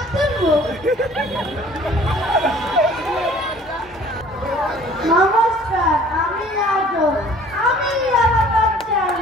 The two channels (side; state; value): both; normal; correlation 0.52